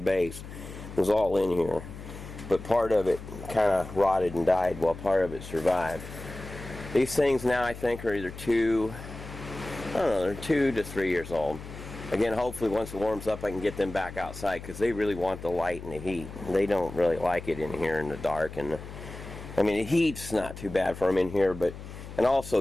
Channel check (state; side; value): noise; left; hum, 12 dB below the sound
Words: It was all in here, but part of it kind of rotted and died while part of it survived. These things now, I think, are either they're 2 to 3 years old. Again, hopefully once it warms up I can get them back outside, because they really want the light and the heat. They don't really like it in here in the dark. And I mean, the heat's not too bad for them in here, but and